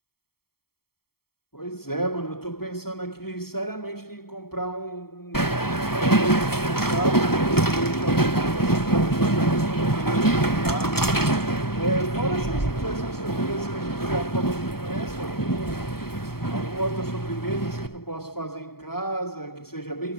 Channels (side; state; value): right; late; 0.95 ms